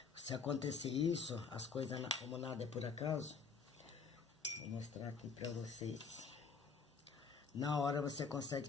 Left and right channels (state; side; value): quieter; right; 5.4 dB